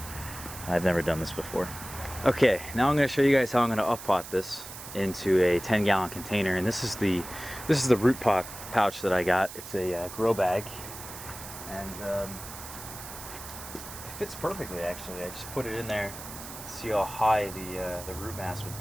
I've never done this before. Okay, now I'm gonna show you guys how I'm gonna up-pot this into a 10-gallon container, and this is the root pot pouch that I got. It's a grow bag, and it fits perfectly actually. I just put it in there to see how high the root mass would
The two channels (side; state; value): right; noise; hiss, 12 dB below the sound